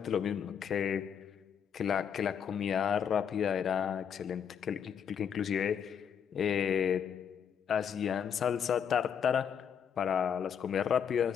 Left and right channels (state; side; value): quieter; right; 7.9 dB